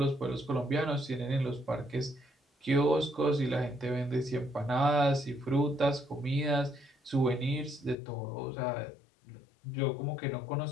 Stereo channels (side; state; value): right; drops out; at 8.0 s